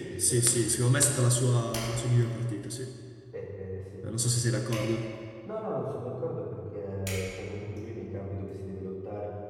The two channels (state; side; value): identical; both; correlation 1.00